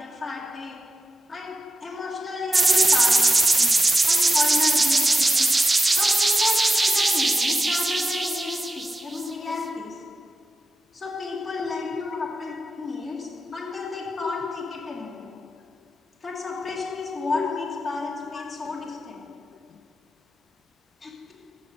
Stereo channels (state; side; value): normal; both; correlation 0.91